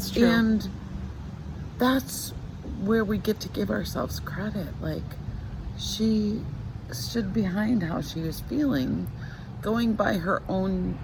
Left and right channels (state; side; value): identical; both; correlation 1.00